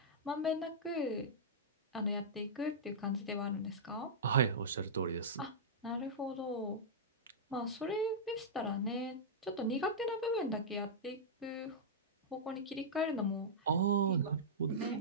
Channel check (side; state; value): both; normal; correlation -0.12